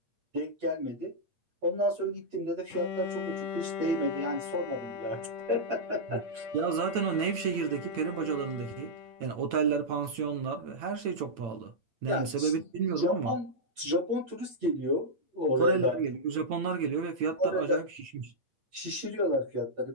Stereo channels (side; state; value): left; late; 8.9 ms